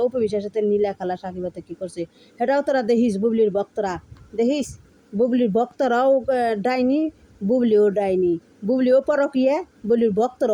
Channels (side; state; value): both; identical; correlation 1.00